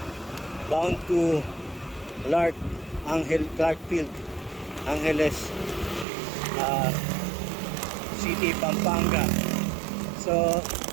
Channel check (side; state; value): left; drops out; at 6.1 s